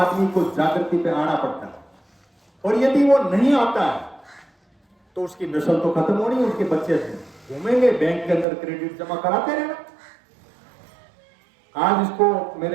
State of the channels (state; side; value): drops out; left; at 8.5 s